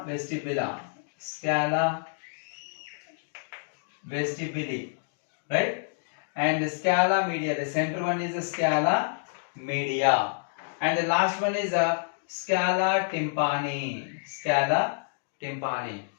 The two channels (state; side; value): silent; right; digital silence